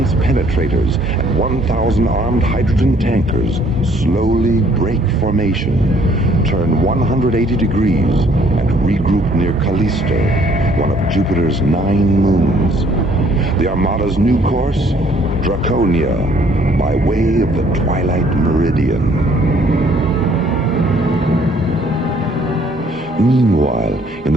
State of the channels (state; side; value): normal; both; correlation 0.61